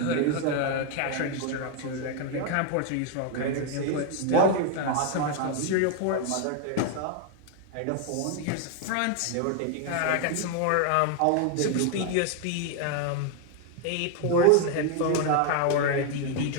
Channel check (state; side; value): different; both; correlation 0.01